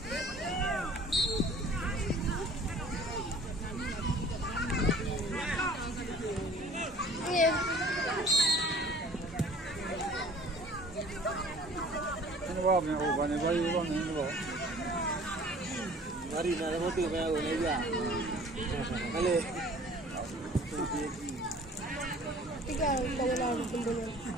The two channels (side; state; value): both; normal; correlation 0.49